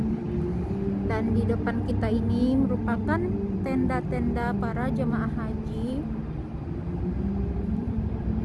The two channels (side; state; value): both; identical; correlation 1.00